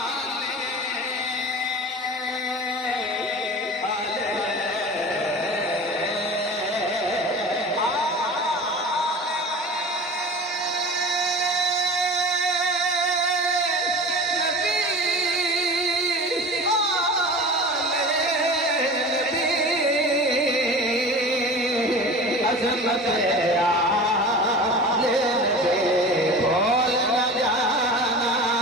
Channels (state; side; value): normal; both; correlation 0.36